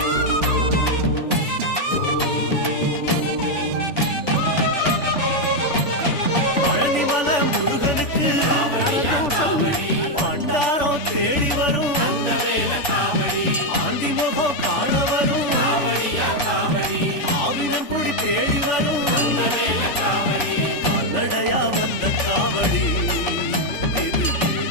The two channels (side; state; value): right; late; 3.5 ms